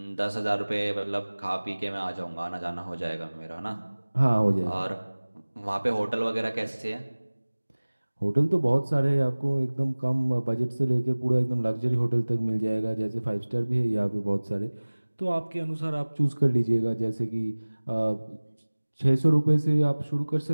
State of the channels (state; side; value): inverted; both; correlation -1.00